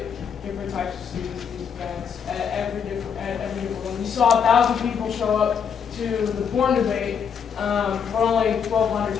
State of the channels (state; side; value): quieter; right; 7.1 dB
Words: different types of students to these events at every different one. We saw 1,000 people show up to the porn debate, but only 1,200